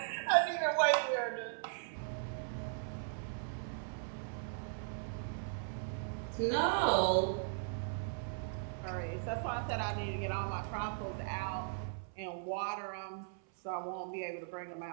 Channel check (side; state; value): left; silent; 52 dB below the other